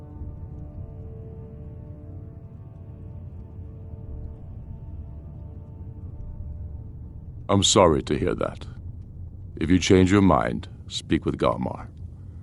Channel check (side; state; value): both; identical; correlation 1.00